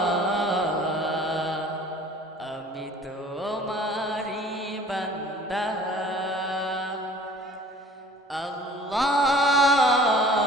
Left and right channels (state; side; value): normal; both; correlation 0.49